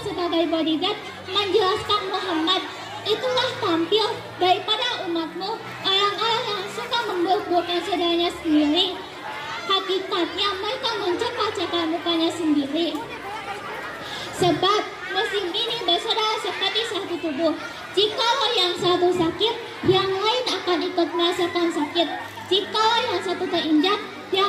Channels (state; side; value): identical; both; correlation 1.00